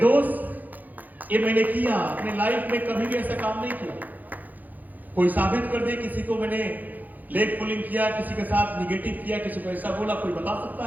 ये मैंने किया अपने लाइफ में, कभी भी ऐसा काम नहीं किया। कोई साबित कर दे किसी को मैंने लेग पुलिंग किया, किसी के साथ निगेटिव किया, किसी को ऐसा बोला, कोई बता सकता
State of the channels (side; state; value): left; late; 0.083 ms